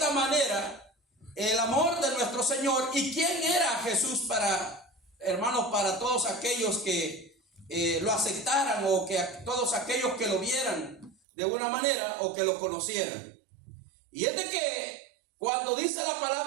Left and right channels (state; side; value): drops out; left; at 11.2 s